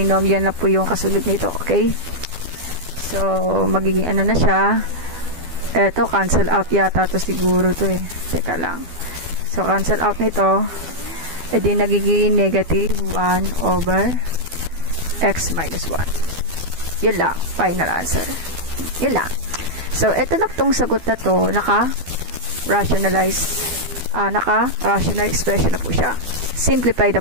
na po yung kasunod nito. Okay. So, magiging ano na siya. Eto, cancel out yata to siguro to eh. Teka lang. So, cancel out nito. E di nagiging negative 1 over x minus 1. Yun lang. Final answer. Yun lang. So, eto na tong sagot na to. Naka-rationalize. Naka-rational expression na po siya. Simplify na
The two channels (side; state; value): left; late; 12 ms